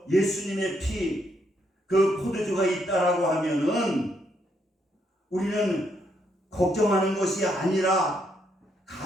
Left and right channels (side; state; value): both; normal; correlation 0.75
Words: 예수님의 피, 그 포도주가 있다라고 하면은 우리는 걱정하는 것이 아니라